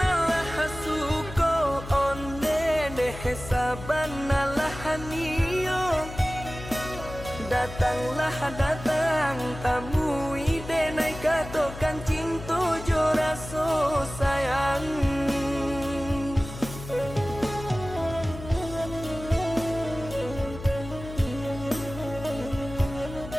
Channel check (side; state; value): left; noise; hum, 12 dB below the sound